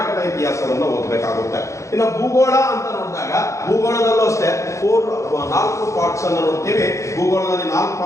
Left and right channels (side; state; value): right; late; 0.15 ms